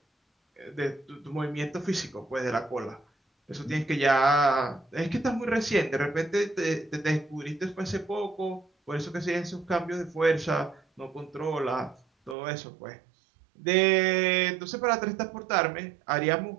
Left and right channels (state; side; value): drops out; left; at 12.4 s